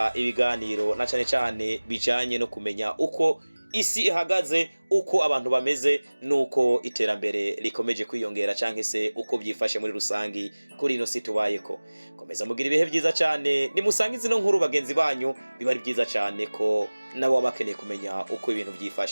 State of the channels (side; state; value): both; inverted; correlation -1.00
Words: ibiganiro na cyane bijanye no kumenya uko isi ihagaze, uko abantu bameze, nuko iterambere rikomeje kwiyongera canke se uko byifashe muri rusangi kuri ino si tubayeko. Komeza mugira ibihe byiza cyane, nimusange zino nkuru bagenzi banyu, biba ari byiza cyane ko nabo bakeneye kumenya uko ibintu